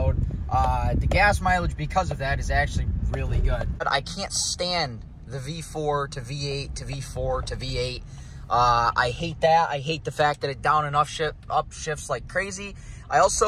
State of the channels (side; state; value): both; identical; correlation 1.00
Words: The gas mileage because of that is actually really good. But I can't stand the V4 to V8 to V4 to V8. I hate that. I hate the fact that it down and up shifts like crazy. I